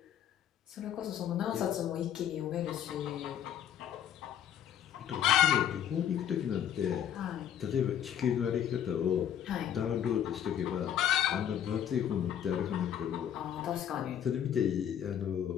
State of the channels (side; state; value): right; quieter; 9.7 dB